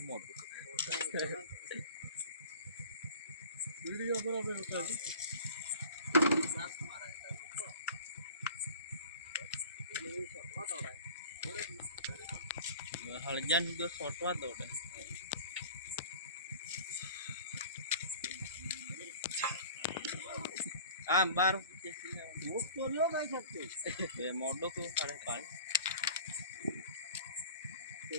હળજાન જો છોટવા દોડે આમ બાર ભૂખ તો લ્યો ગાઈ શકતી બે મોડો તો સાડે પાંચ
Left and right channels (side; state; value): both; inverted; correlation -0.43